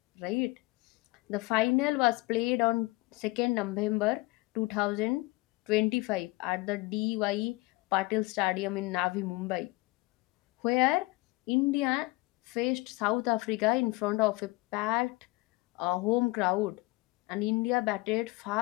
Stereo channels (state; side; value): quieter; right; 23.1 dB